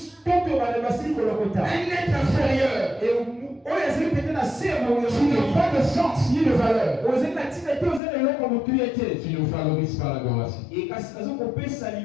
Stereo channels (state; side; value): drops out; right; at 8.0 s